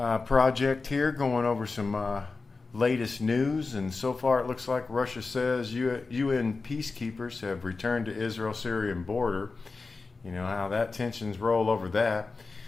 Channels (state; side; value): quieter; right; 4.0 dB